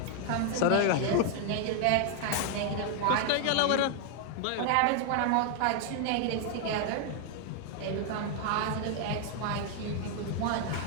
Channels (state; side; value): different; both; correlation 0.00